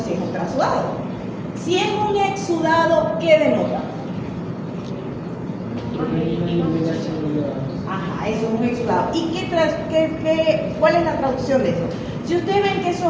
es un trasudado. Si es un exudado, ¿qué denota? Ajá, eso es un exudado. ¿Y cuál es la traducción de eso? Si ustedes ven que eso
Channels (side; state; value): both; identical; correlation 1.00